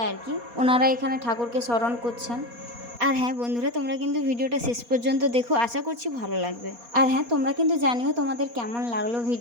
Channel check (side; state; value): left; late; 4.2 ms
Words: আর কি, ওনারা এখানে ঠাকুরকে স্মরণ করছেন। আর হ্যাঁ বন্ধুরা, তোমরা কিন্তু ভিডিওটা শেষ পর্যন্ত দেখো, আশা করছি ভালো লাগবে। আর হ্যাঁ, তোমরা কিন্তু জানিও তোমাদের কেমন লাগলো